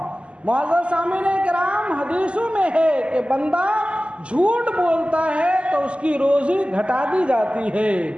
معزز سامعین کرام، حدیثوں میں ہے کہ بندہ جھوٹ بولتا ہے تو اس کی روزی گھٹا دی جاتی ہے،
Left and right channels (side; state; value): left; late; 0.055 ms